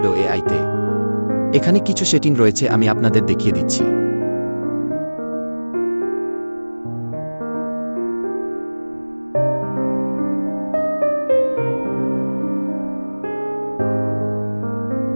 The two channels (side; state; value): both; inverted; correlation -1.00